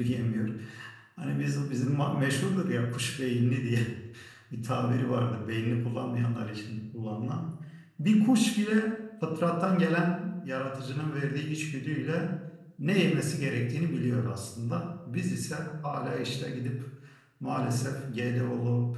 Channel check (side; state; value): both; identical; correlation 1.00